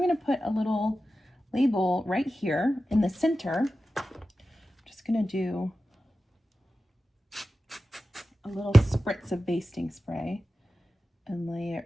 to put a little label right here in the center. I'm just going to do a little spritz of basting spray and lay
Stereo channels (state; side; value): normal; both; correlation 0.93